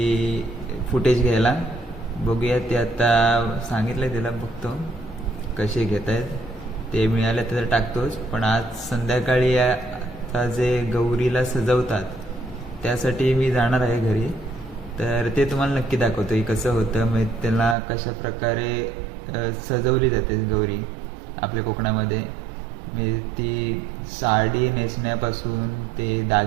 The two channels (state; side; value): drops out; left; at 17.8 s